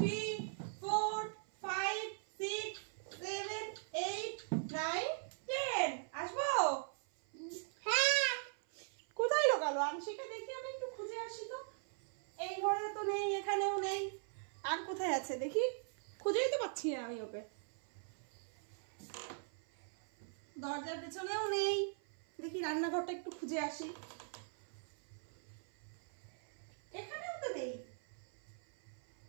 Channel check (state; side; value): silent; left; 51 dB below the other